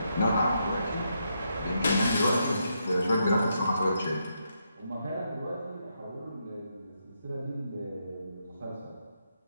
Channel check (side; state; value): both; inverted; correlation -0.80